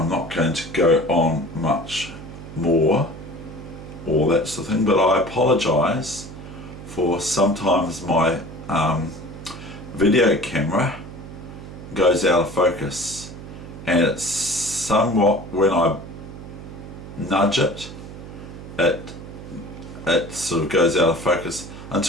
not going to go on much more, all that sort of thing, but I apologise for sometimes my video camera goes out of focus, and it's somewhat, when I nudge it, it sort of goes out of focus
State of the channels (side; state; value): right; noise; hum, 13 dB below the sound